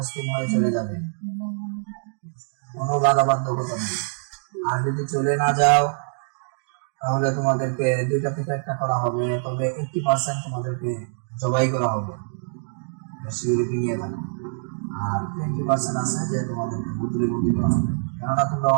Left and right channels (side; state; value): left; silent; digital silence